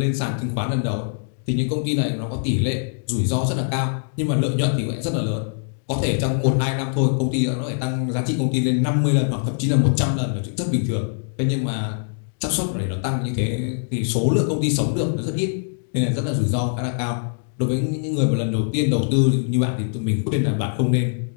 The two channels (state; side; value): silent; right; digital silence